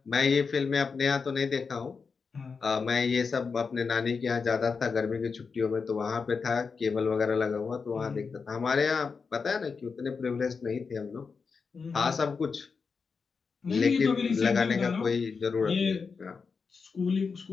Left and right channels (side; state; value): right; quieter; 5.2 dB